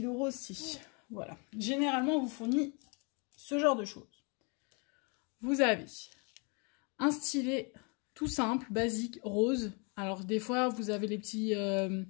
rose si. Voilà. Généralement, on vous fournit ce genre de choses. Vous avez un stylet tout simple, basique, rose. Alors, des fois, vous avez les petits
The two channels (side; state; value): right; quieter; 33.8 dB